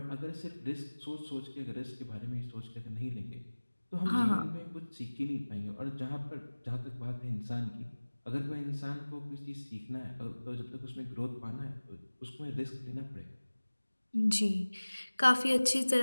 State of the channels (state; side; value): inverted; both; correlation -1.00